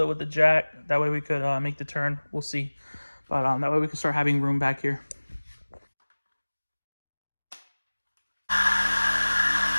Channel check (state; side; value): inverted; both; correlation -1.00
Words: it with the jack. That way we could make the turn. We'll see. But that way we can start having room back here.